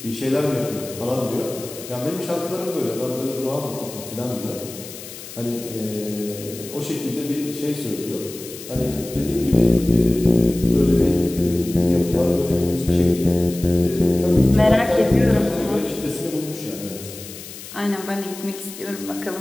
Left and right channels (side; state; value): left; noise; hiss, 14 dB below the sound